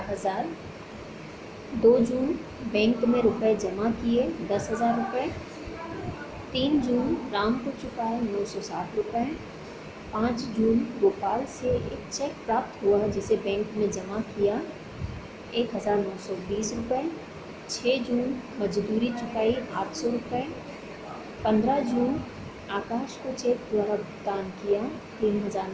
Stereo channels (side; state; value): both; identical; correlation 1.00